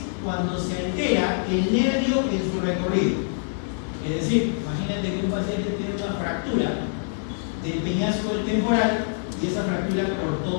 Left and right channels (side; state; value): right; silent; digital silence